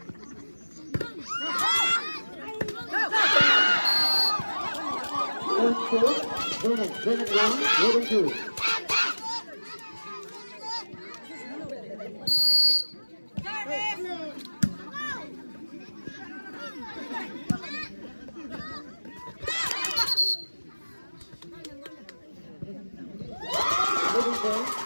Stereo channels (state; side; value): inverted; both; correlation -1.00